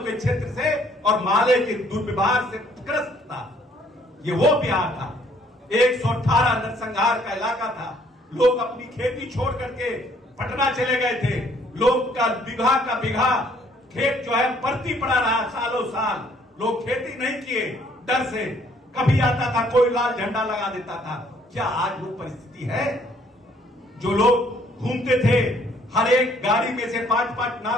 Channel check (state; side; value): normal; both; correlation 0.63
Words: क्षेत्र से और माले के दुर्व्यवहार से ग्रस्त था। ये वो बिहार था। 118 नरसंहार का इलाका था। लोग अपनी खेती छोड़ करके पटना चले गए थे। लोग का बिघा खेत जो है परती पड़ा रहा सालों साल। लोग खेती नहीं किए डर से। कभी आता था कोई लाल झंडा लगा देता था। क्या आज वो परिस्थिति है? जो लोग घूमते थे, हर एक गाड़ी में से 5-5